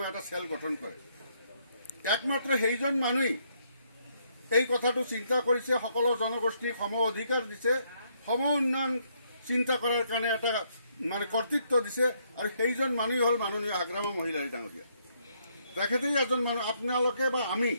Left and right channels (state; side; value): inverted; both; correlation -0.72